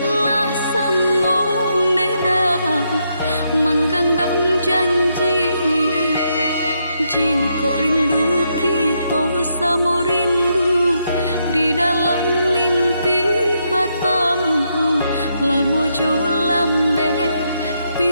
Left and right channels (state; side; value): inverted; both; correlation -0.79